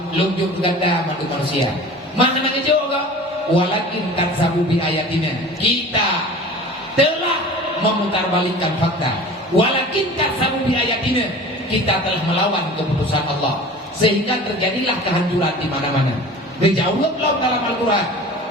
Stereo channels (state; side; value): normal; both; correlation 0.40